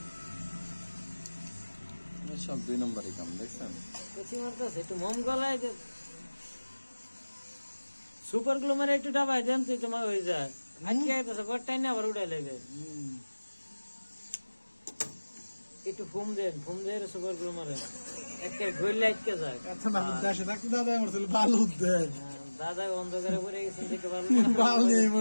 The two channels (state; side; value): inverted; both; correlation -1.00